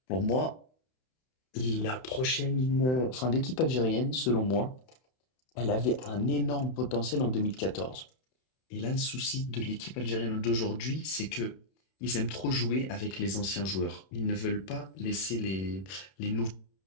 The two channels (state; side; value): late; right; 31 ms